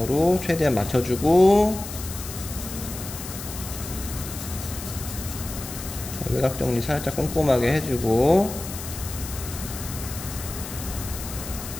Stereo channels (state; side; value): noise; left; hiss, 10 dB below the sound